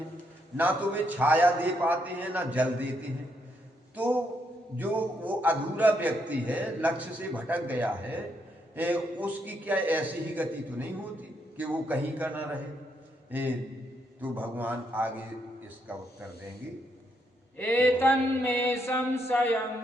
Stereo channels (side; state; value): both; normal; correlation 0.77